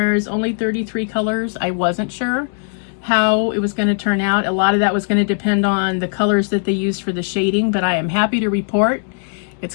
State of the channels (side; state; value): right; silent; digital silence